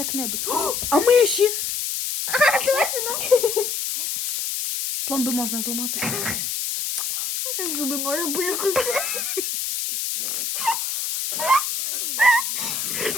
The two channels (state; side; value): noise; left; hiss, 2 dB below the sound